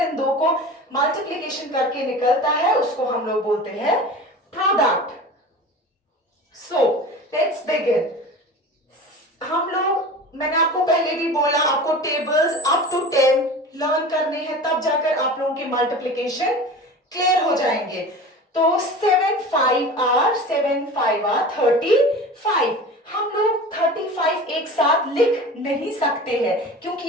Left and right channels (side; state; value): both; normal; correlation 0.35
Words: इन दो को मल्टीप्लिकेशन करके निकलता है, उसको हम लोग बोलते हैं प्रोडक्ट। So let's begin. हम लोग, मैंने आपको पहले भी बोला, आपको टेबल्स अप टू 10 लर्न करने हैं, तब जाकर आप लोगों के मल्टीप्लिकेशन क्लियर हो जाएंगे। तो 7 5 आर 35। हम लोग 35 एक साथ लिख नहीं सकते हैं क्योंकि